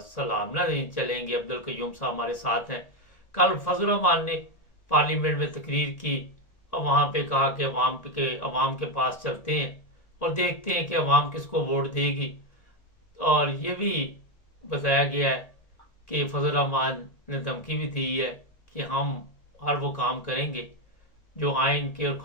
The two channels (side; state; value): right; late; 1.8 ms